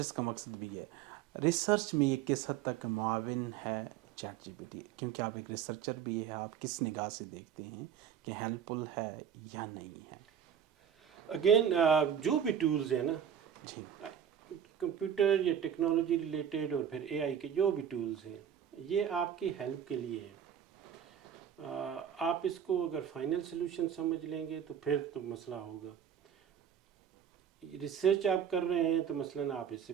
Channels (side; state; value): left; quieter; 8.8 dB